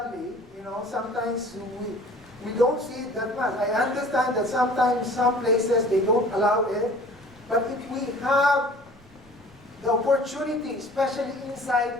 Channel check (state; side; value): noise; right; rumble, 26 dB below the sound